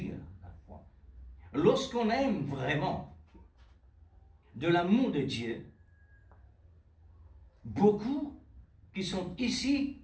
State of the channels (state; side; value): identical; both; correlation 1.00